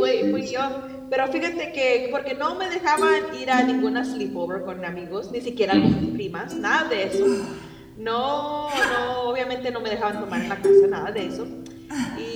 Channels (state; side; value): identical; both; correlation 1.00